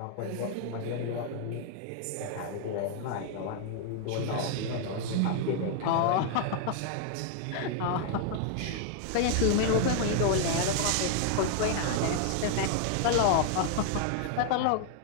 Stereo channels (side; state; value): both; different; correlation 0.00